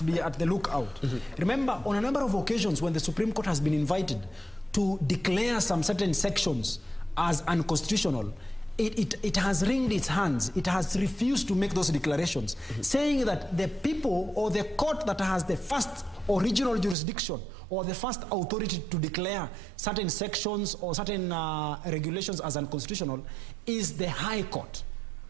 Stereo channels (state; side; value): drops out; left; at 16.9 s